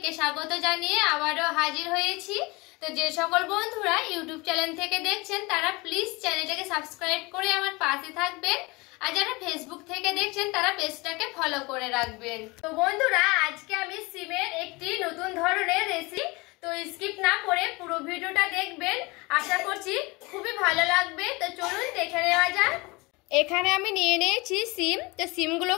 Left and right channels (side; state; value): right; quieter; 24.9 dB